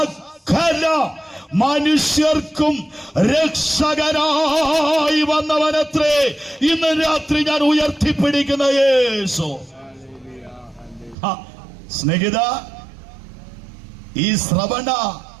മനുഷ്യർക്കും രക്ഷകനായി വന്നവനത്രേ ഇന്ന് രാത്രി ഞാൻ ഉയർത്തിപ്പിടിക്കുന്ന യേശു. സ്നേഹിത, ഈ ശ്രവണ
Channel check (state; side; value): drops out; left; at 11.2 s